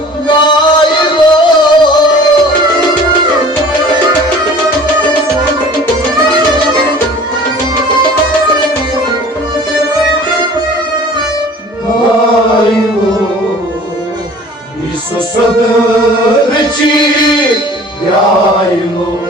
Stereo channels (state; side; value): normal; both; correlation 0.46